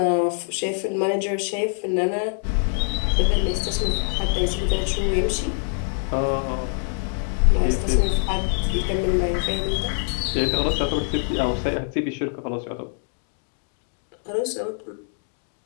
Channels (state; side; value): silent; right; 62 dB below the other